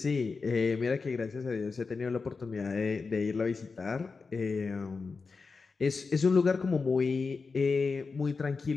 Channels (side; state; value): right; quieter; 4.5 dB